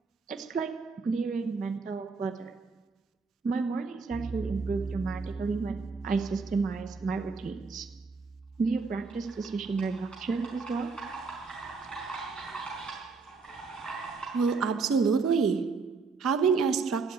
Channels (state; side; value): quieter; left; 4.6 dB